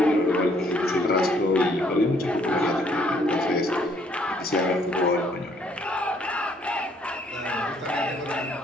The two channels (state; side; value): normal; both; correlation 0.65